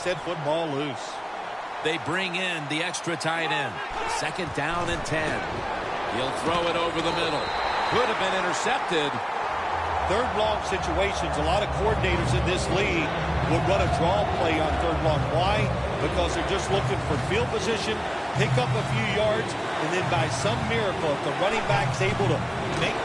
that football loose. They bring in the extra tight end. Second down and 10. He'll throw it over the middle. Could have been intercepted. Third long situations, a lot of coordinators in this league would run a draw play on third long. Why? Because they're just looking for field position, pick up a few yards, and then by some miracle, if the running back's able to make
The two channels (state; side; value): identical; both; correlation 1.00